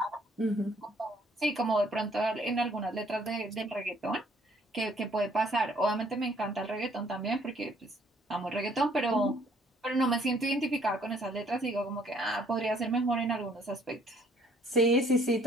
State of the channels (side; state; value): both; normal; correlation 0.62